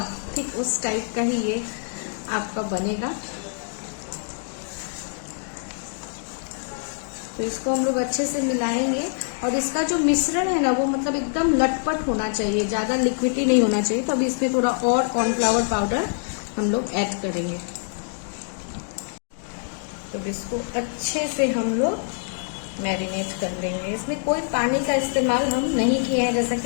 ठीक उस टाइप का ही ये आपका बनेगा। तो इसको हम लोग अच्छे से मिलाएंगे और इसका जो मिश्रण है ना वो मतलब एकदम लटपट होना चाहिए, ज्यादा लिक्विडी नहीं होना चाहिए। तो अभी इसमें थोड़ा और कॉर्नफ्लावर पाउडर हम लोग ऐड करेंगे। तो इसको अच्छे से हम लोग मैरिनेट कर लेंगे। इसमें कोई पानी का इस्तेमाल हम नहीं किए हैं, जैसा कि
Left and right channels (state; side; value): silent; right; digital silence